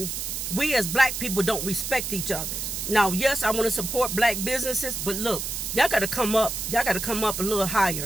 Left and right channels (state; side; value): noise; right; hiss, 4 dB below the sound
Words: we as black people don't respect each other. Now, yes, I want to support black businesses, but look, y'all got to come up. Y'all got to come up a little